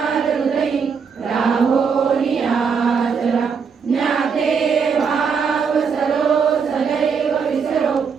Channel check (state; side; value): quieter; left; 6.0 dB